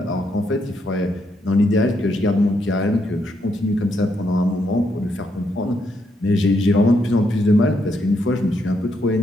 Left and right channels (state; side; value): normal; both; correlation 0.77